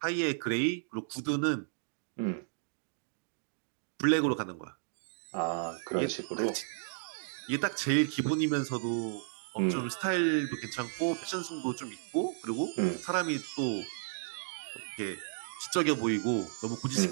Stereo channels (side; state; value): left; silent; digital silence